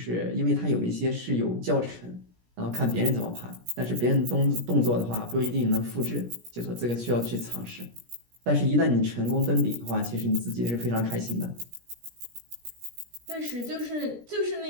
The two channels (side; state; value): left; late; 17 ms